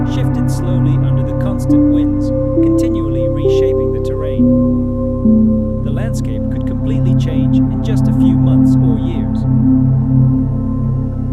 shifted slowly under the constant winds, continually reshaping the terrain. The landscape could completely change in just a few months or years.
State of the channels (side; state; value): both; identical; correlation 1.00